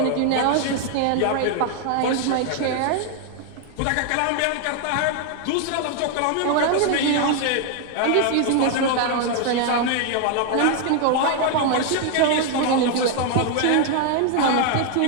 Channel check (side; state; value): both; different; correlation 0.00